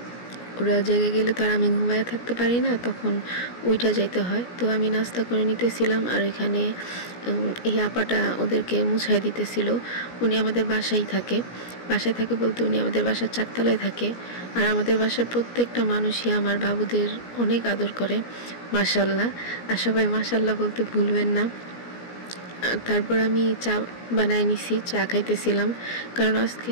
ওরা জেগে গেলে তো আর আমি ঘুমায়া থাকতে পারি না, তখন উইঠা যাইতে হয়। তো আমি নাস্তা করে নিতেছিলাম, আর এখানে এই আপাটা ওদেরকে মুছাই দিতেছিল। উনি আমাদের বাসায় থাকে বলতে উনি আমাদের বাসার ৪ তলায় থাকে। আর আমাদের বাসার প্রত্যেকটা মানুষই আমার বাবুদের অনেক আদর করে, মাশাআল্লাহ। আর সবাই মাশাআল্লাহ বলতে ভুলবেন না। তারপর আমি চা বানায় নিছি, চা খাইতেছিলাম, কারণ আজকে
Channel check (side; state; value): right; late; 17 ms